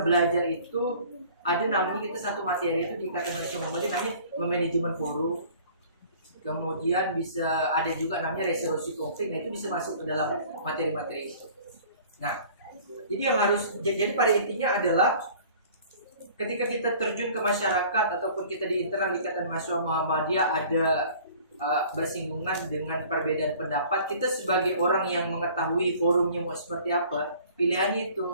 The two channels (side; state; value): both; inverted; correlation -0.49